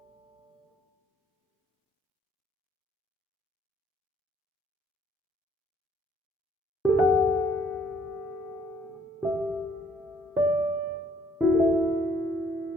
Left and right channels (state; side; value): normal; both; correlation 0.63